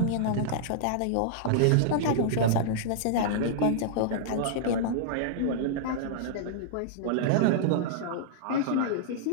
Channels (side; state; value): both; different; correlation -0.02